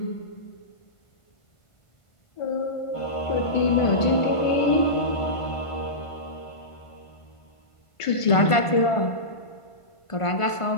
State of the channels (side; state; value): right; late; 1.5 ms